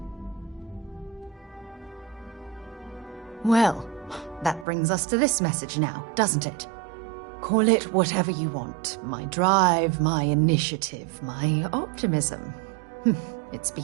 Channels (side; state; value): left; drops out; at 4.7 s